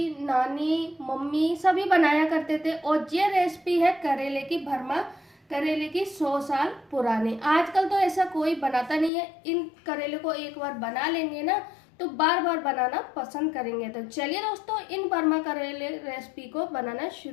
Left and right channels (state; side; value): drops out; right; at 9.1 s